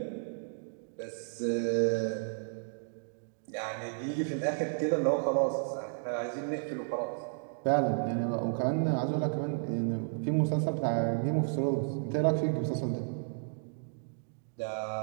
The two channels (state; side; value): silent; left; digital silence